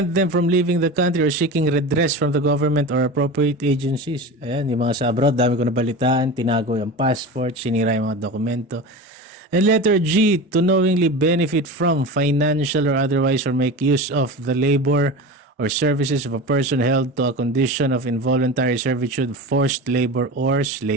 them from leaving the country or seeking redress from the government or appropriate agencies. Ayan, yung mga sa abroad, dami ko nabalitaan, tinago yung passport, sinira yung mga dokumento. And letter G, to knowingly benefit from, financial or otherwise, or make use of the labor or services of a person held to a condition of involuntary servitude, forced labor, or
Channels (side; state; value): both; normal; correlation 0.29